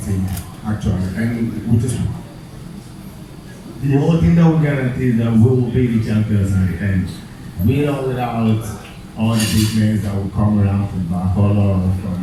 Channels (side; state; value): both; identical; correlation 1.00